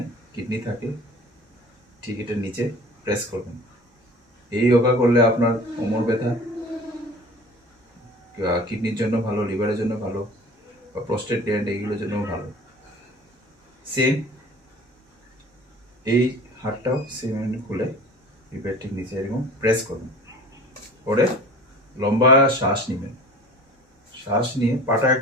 কিডনি থাকে, ঠিক এটার নিচে প্রেস করবেন। এই যোগা করলে আপনার কোমর ব্যথা, কিডনির জন্য ভালো, লিভারের জন্য ভালো, বা প্রস্টেট গ্ল্যান্ড এইগুলোর জন্য ভালো। সেম এই হাতটাও সেম খুলে রিবের ঠিক নিচে এরকম প্রেস করবেন, করে লম্বা শ্বাস নেবেন। শ্বাস নিয়ে পাটা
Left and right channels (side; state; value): both; normal; correlation 0.42